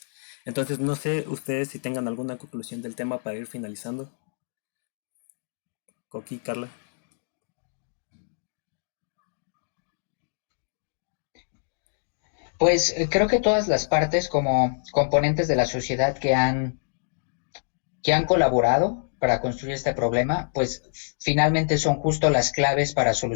Entonces no sé ustedes si tengan alguna conclusión del tema para ir finalizando. Coqui, Carla. Pues creo que todas las partes como componentes de la sociedad que han colaborado para construir este problema, pues finalmente son justo las claves para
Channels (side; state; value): right; silent; digital silence